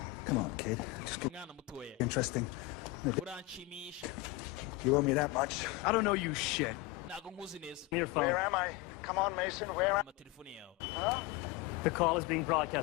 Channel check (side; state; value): right; quieter; 19.0 dB